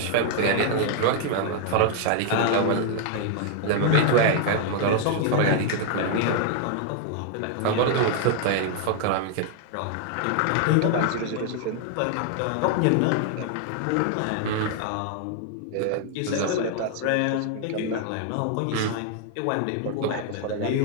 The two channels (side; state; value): both; different; correlation 0.00